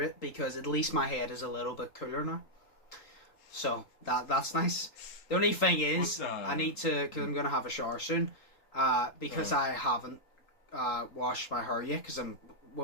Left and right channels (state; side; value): late; right; 3.9 ms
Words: because at least my head is a little bit cooler now. So that's nice. The only thing is, I need to, because I'm going to have a shower soon, because I haven't washed my hair yet, because I'm